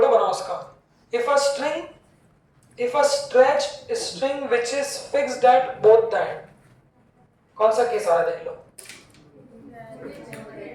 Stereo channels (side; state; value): both; identical; correlation 1.00